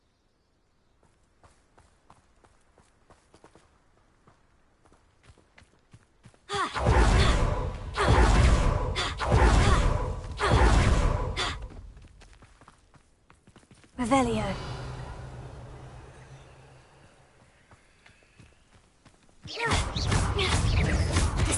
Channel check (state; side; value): identical; both; correlation 1.00